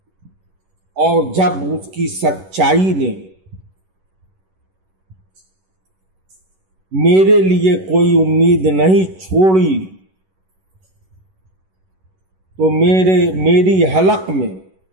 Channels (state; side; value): late; left; 11 ms